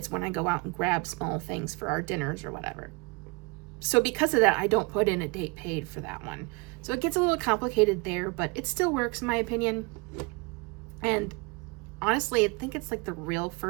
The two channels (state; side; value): quieter; left; 27.8 dB